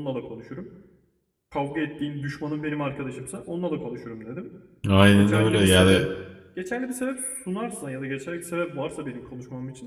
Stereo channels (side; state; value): both; identical; correlation 1.00